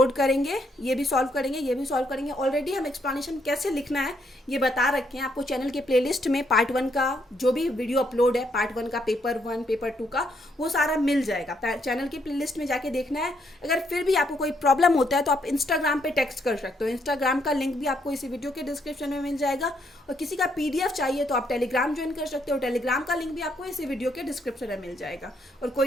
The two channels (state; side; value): normal; both; correlation 0.73